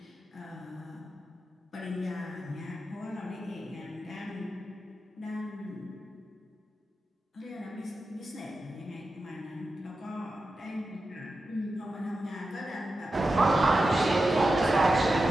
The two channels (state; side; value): normal; both; correlation 0.91